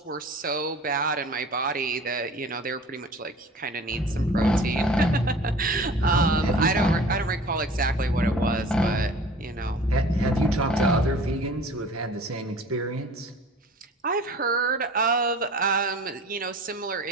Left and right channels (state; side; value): normal; both; correlation 0.44